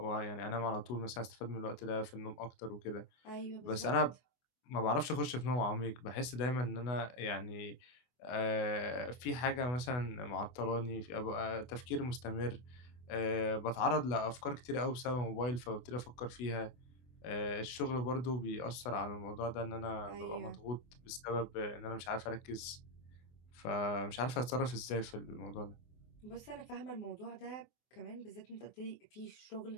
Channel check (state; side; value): late; right; 24 ms